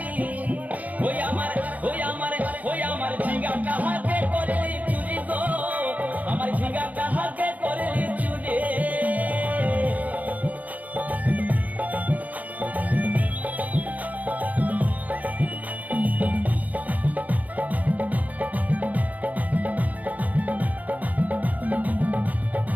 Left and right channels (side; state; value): left; late; 0.077 ms